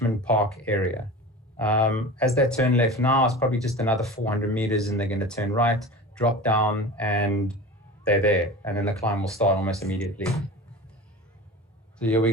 Park area. As they turn left now, it's probably just another 400 meters, and they're going to turn right, drop down, and they're there. And then the climb will start almost immediately. So here we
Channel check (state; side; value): normal; both; correlation 0.34